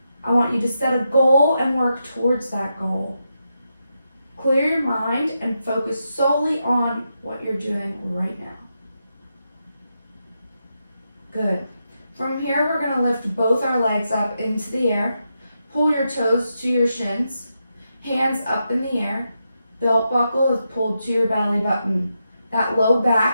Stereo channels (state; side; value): inverted; both; correlation -0.85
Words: I want you to set a goal and work towards that goal. Clear your mind and focus solely on what you're doing right now. Good. From here, we're going to lift both our legs up into the air. Pull your toes to your shins. Hands up in the air. Belt buckle is pulled to your belly button. That low